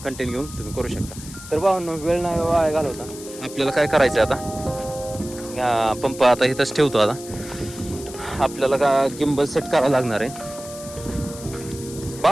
कंटेंट घेऊन तुम्ही करू शकता. तर भावांनो, वेळ नाही वाया घालवता. आपल्याला काय करायचं आता, पंप आता इथंच ठेवतो. आता आपल्याला का गिंबल सेट करावं लागणार आहे.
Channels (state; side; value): noise; left; hiss, 14 dB below the sound